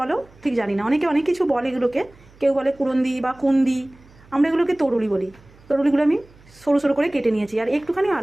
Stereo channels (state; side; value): noise; right; hum, 26 dB below the sound